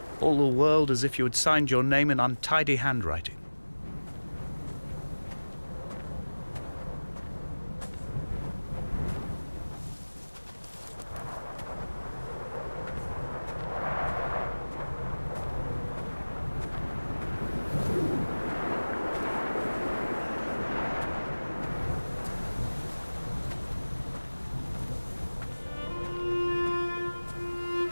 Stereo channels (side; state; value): both; inverted; correlation -1.00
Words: all the world as if you had signed your name in untidy handwriting.